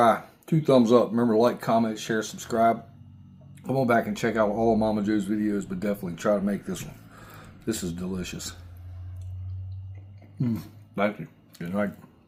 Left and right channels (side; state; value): both; identical; correlation 1.00